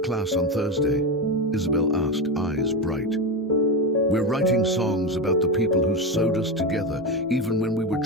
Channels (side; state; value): both; normal; correlation 0.15